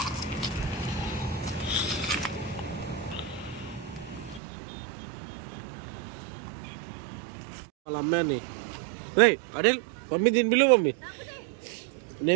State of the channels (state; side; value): drops out; left; at 4.4 s